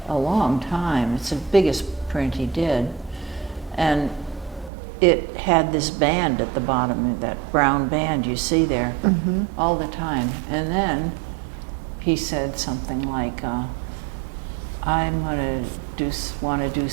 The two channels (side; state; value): left; drops out; at 4.7 s